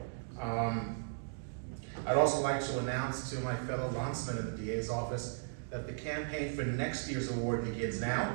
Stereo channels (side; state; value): left; silent; digital silence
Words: I'd also like to announce to my fellow landsmen in the DA's office that the campaign for next year's award begins now.